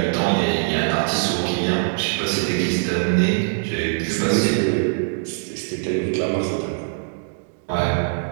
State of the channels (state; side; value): silent; left; digital silence